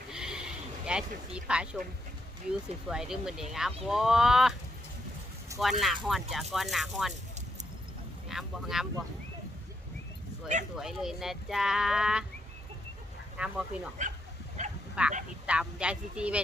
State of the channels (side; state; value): both; normal; correlation 0.79